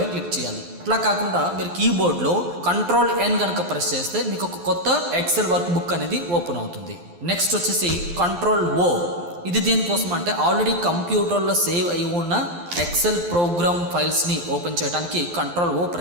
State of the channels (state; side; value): late; left; 12 ms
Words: క్లిక్ చేయాలి. అట్లా కాకుండా మీరు కీబోర్డ్లో Ctrl+N కనుక ప్రెస్ చేస్తే మీకు ఒక కొత్త ఎక్సెల్ వర్క్ బుక్ అనేది ఓపెన్ అవుతుంది. నెక్స్ట్ వచ్చేసి Ctrl+O. ఇది దేనికోసం అంటే ఆల్రెడీ కంప్యూటర్లో సేవ్ అయి ఉన్న ఎక్సెల్ ప్రోగ్రామ్ ఫైల్స్ని ఓపెన్ చేయడానికి Ctrl+O